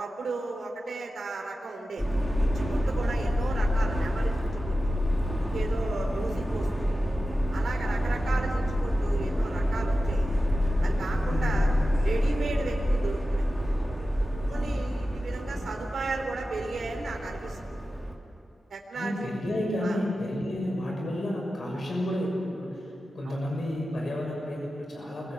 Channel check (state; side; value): normal; both; correlation 0.93